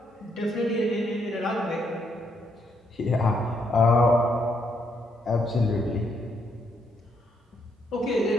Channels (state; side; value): normal; both; correlation 0.75